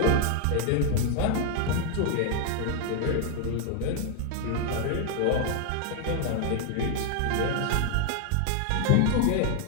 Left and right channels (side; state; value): both; different; correlation 0.00